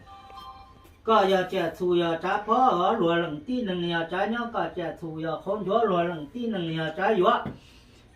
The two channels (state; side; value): identical; both; correlation 1.00